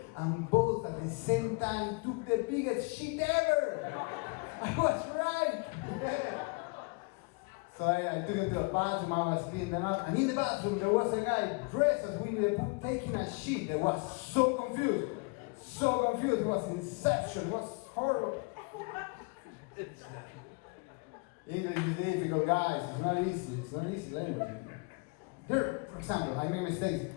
And both at the same time took the biggest shit ever. I was right. So I took them to the bathroom, I was cleaning them up. And in the bathroom, there was a guy dressed as Winnie the Pooh taking a shit. I was so confused. So confused. It was Inception. It was horrible. English is difficult, guys. It's not easy. It's not easy language. Here, for example, I make mistakes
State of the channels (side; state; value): right; quieter; 31.1 dB